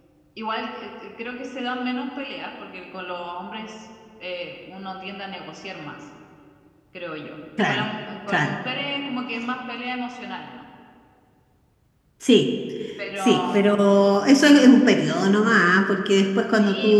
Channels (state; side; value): identical; both; correlation 1.00